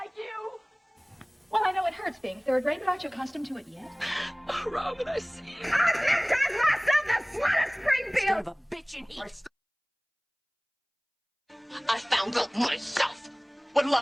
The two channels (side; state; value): both; identical; correlation 1.00